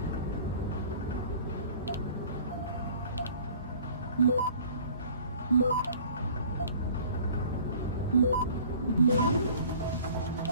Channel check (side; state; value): both; inverted; correlation -0.49